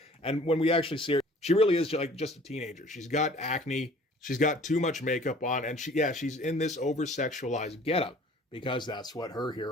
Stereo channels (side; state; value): both; normal; correlation 0.51